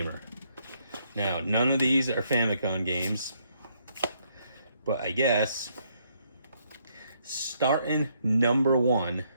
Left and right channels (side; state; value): both; inverted; correlation -0.72